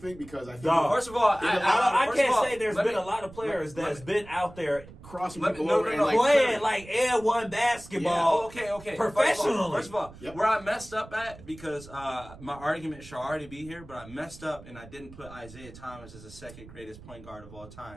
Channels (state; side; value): noise; right; rumble, 18 dB below the sound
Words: because I think. First of all, I can't say there's been a lot of players that's been out there crossing people over and playing like N1 basketball. Okay. Professionally. First of all, where I messed up at, because my argument should already be here, but I messed up and I didn't put Isaiah Thomas as the second greatest point guard of all